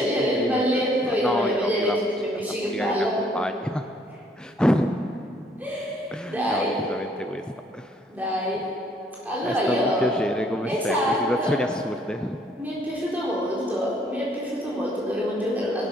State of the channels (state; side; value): normal; both; correlation 0.65